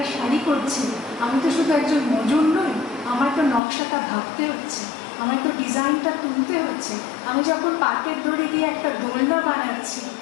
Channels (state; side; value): drops out; right; at 3.6 s